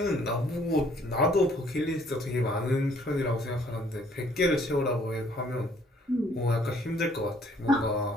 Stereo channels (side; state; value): both; normal; correlation 0.62